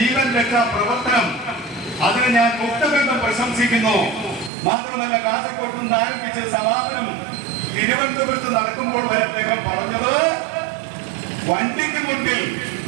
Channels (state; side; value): drops out; left; at 4.5 s